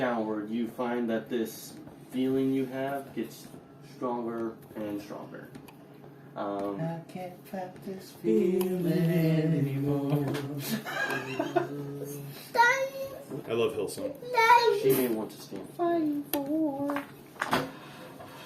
you find that this feeling you have gets stronger and stronger. I can't fight this feeling anymore. I love Hillsong. She may want to stand.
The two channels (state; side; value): identical; both; correlation 1.00